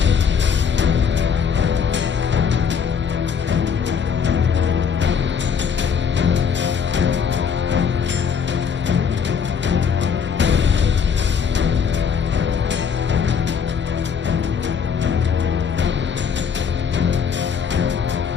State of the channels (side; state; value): right; quieter; 6.7 dB